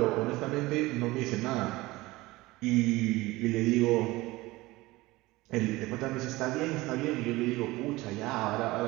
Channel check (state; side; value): quieter; left; 20.0 dB